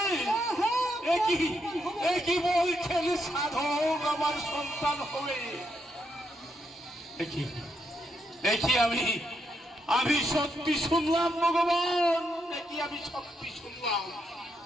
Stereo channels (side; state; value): both; normal; correlation 0.80